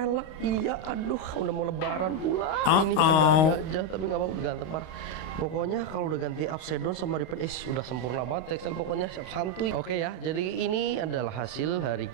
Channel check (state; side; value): late; right; 32 ms